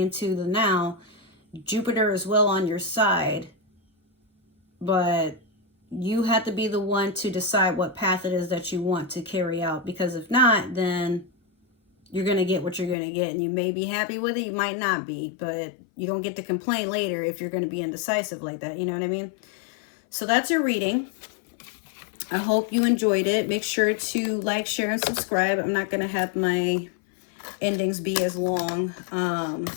the now, Jupiter is well on your side, but you have to be the one to decide what path it is that you want to carry out, because if not, then you're going to get what you're going to get, and you may be happy with it, you might not be, but you don't get to complain later if you're going to be indecisive like that, you know what I mean? So that's your reading. I hope you enjoyed it. Make sure to like, share, and subscribe. I'm not going to have my endings be as long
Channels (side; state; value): right; drops out; at 13.0 s